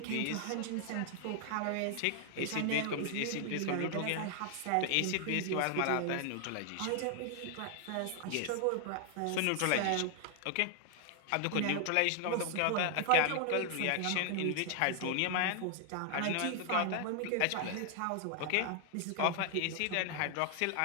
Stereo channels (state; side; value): different; both; correlation 0.00